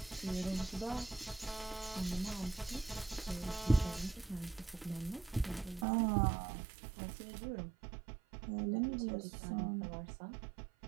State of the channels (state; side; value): drops out; left; at 5.9 s